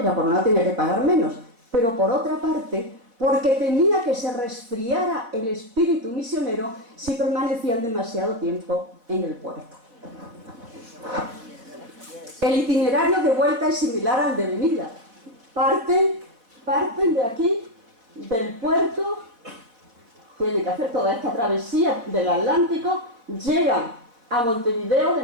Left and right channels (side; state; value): left; late; 4.2 ms